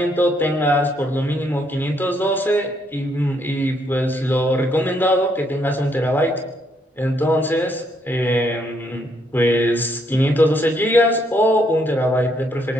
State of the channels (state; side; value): normal; both; correlation 0.72